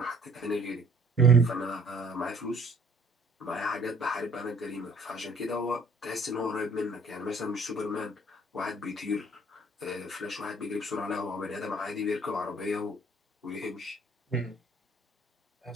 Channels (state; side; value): normal; both; correlation 0.58